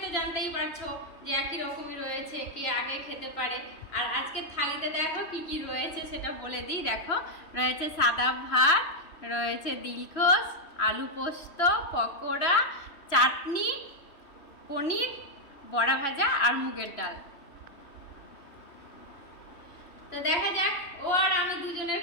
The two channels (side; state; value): right; late; 2.9 ms